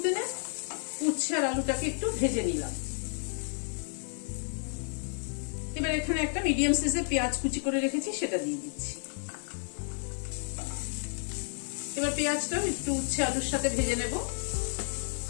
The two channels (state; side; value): silent; right; digital silence